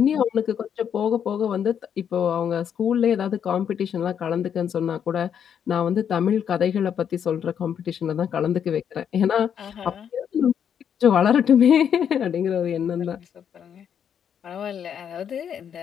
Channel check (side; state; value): right; quieter; 8.4 dB